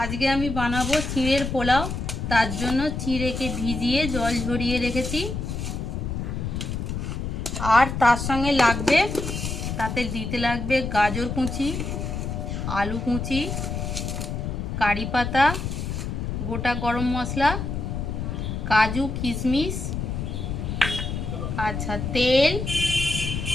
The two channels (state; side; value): noise; left; rumble, 4 dB below the sound